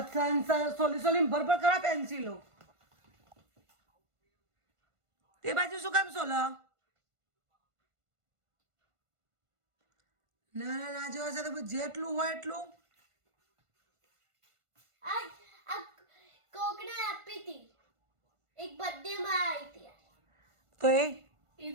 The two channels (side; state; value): left; late; 1.5 ms